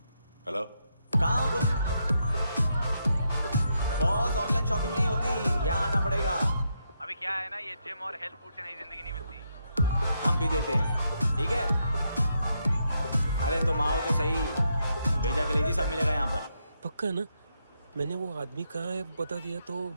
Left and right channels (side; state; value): both; inverted; correlation -0.80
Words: हेलो, कहाँ हो तुम? बॉस, ऑनलाइन शॉपिंग नहीं होती, यहाँ आना पड़ेगा। अभी क्या है ना, ये जिम और हेल्थ फूड से नई जिंदगी नहीं मिलती। हम भी देते हैं, ठीक है? अरे तुम आओ तो सही, भेजा कलेजी सब मिलेगा यहाँ पर। पक्का ना? मैंने वो आदमी कहाँ है बता दिया तो